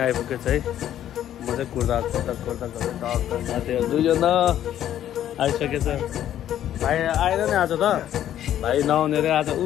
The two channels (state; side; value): quieter; right; 11.3 dB